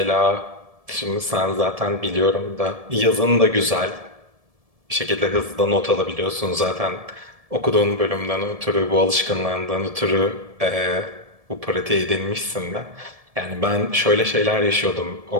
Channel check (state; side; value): late; left; 1.7 ms